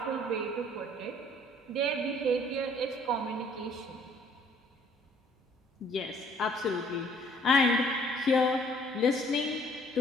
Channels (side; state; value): both; normal; correlation 0.59